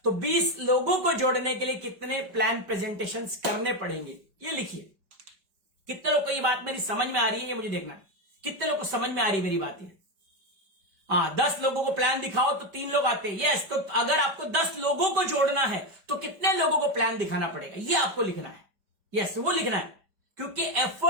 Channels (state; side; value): late; left; 5.1 ms